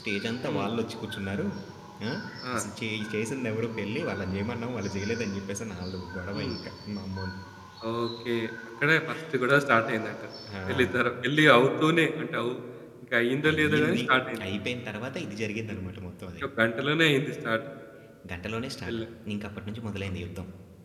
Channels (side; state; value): both; identical; correlation 1.00